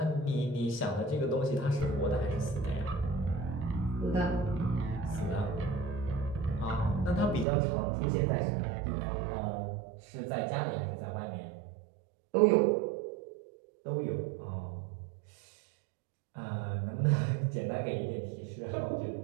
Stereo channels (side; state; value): left; drops out; at 7.5 s